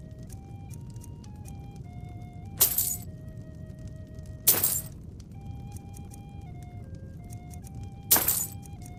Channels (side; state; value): both; identical; correlation 1.00